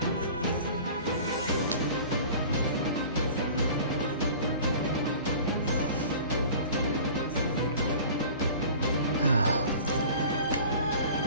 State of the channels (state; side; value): inverted; both; correlation -0.42